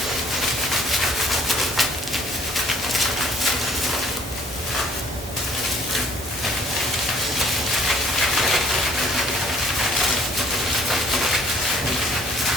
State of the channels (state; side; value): normal; both; correlation 0.59